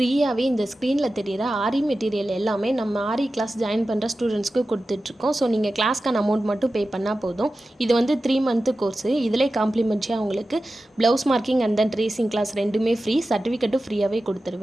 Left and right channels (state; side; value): normal; both; correlation 0.94